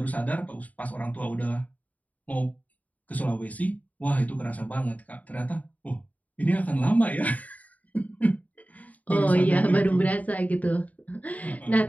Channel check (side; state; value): right; late; 0.073 ms